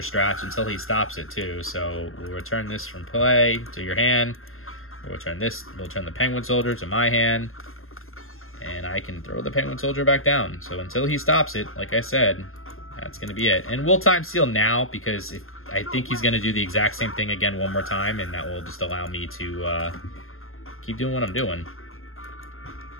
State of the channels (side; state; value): right; late; 0.61 ms